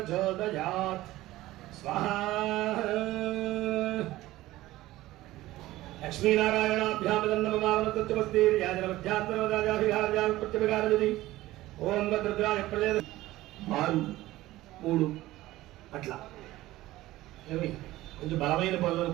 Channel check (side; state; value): left; quieter; 16.8 dB